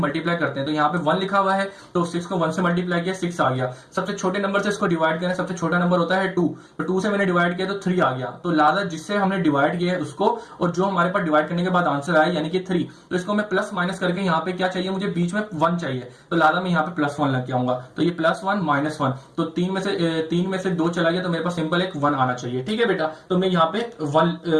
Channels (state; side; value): identical; both; correlation 1.00